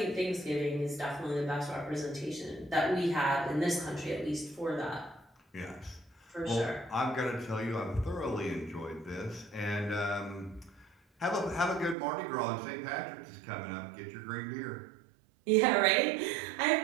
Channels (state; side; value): drops out; left; at 12.0 s